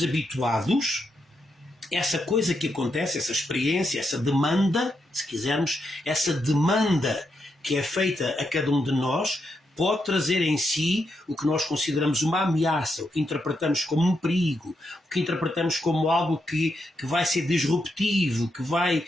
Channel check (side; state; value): both; normal; correlation 0.82